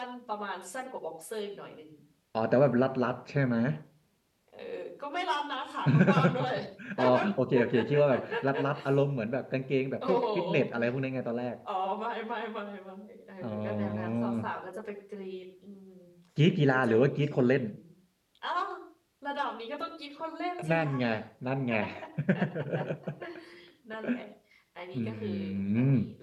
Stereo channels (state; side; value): identical; both; correlation 1.00